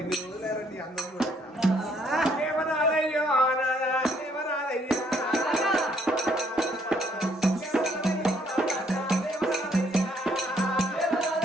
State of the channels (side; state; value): both; normal; correlation 0.67